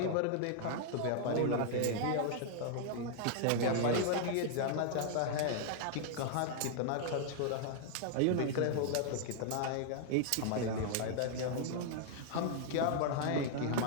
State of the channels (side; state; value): both; different; correlation -0.01